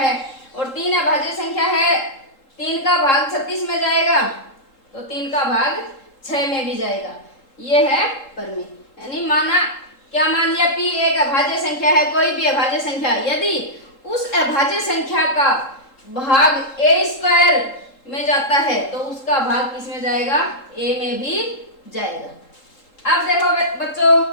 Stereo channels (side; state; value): right; late; 3.7 ms